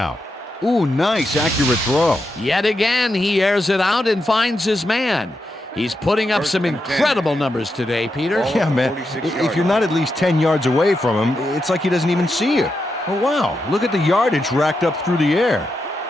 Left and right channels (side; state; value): both; normal; correlation 0.86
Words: Ooh, nice, accurate throw. Yet again, he airs it out and finds his man. He's putting up some incredible numbers today, Peter. Yeah, man. If you're not at least 10 yards away from him, it's like he doesn't even see you. Oh, wow. Look at the yardage racked up through the air.